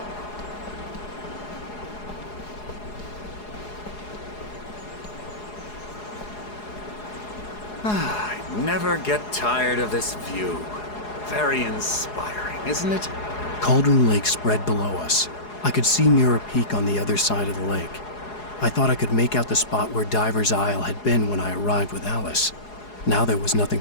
I never get tired of this view. Very inspiring, isn't it? Cauldron Lake spread below us. I could see Mirror Peak on the other side of the lake. I thought I could make out the spot where Diver's Isle had been when I arrived with Alice. Now there was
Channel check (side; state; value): right; late; 4.8 ms